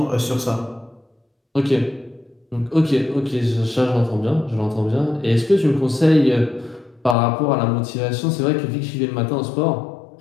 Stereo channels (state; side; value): drops out; right; at 7.2 s